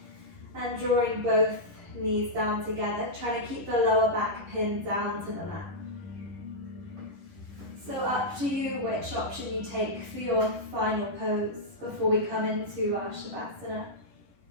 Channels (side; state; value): left; late; 11 ms